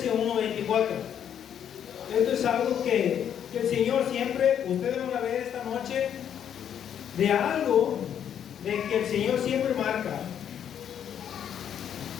1:24. Esto es algo que el Señor siempre, ustedes van a ver esta noche, de algo de que el Señor siempre marca.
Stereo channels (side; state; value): right; quieter; 9.1 dB